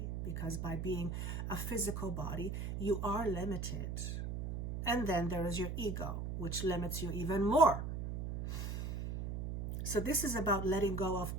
Because by being a physical body, you are limited. And then there is your ego, which limits you even more. So this is about letting go of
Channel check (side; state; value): right; noise; hum, 4 dB below the sound